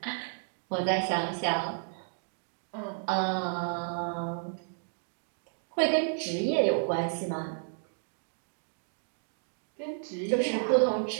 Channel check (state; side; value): silent; left; digital silence